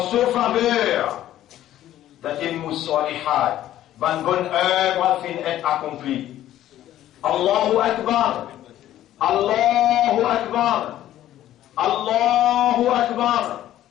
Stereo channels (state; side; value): quieter; right; 12.9 dB